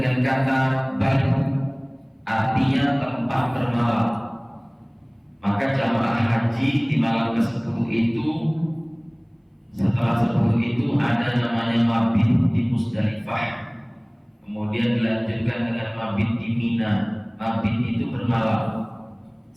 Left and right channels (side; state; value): both; identical; correlation 1.00